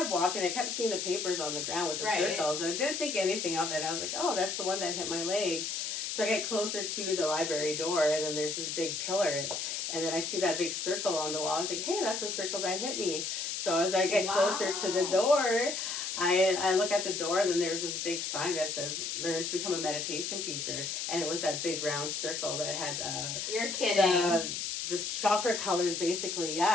walking. I kept seeing the papers on the ground with the circles, and I didn't think anything of it. I was like, "Oh, that's the one that hit my leg." So I get closer to the library door, and then there's this big pillar, and then I see that big circle on the wall. I was like, hey, that's the circle that hit me. So as I get closer to the door, I look at the door, and then there's this big sign that says, learn to become a meditation teacher. And it was that big round circle that had... You're kidding. The chakra colors, basically,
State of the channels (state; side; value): noise; left; hiss, 3 dB below the sound